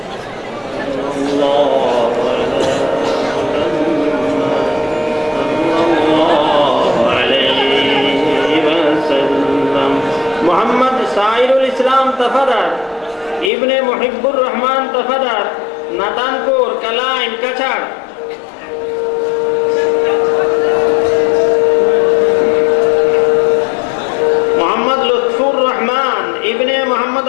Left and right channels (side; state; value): right; drops out; at 13.5 s